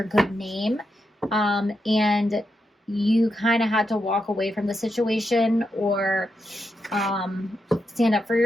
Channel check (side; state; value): both; normal; correlation 0.85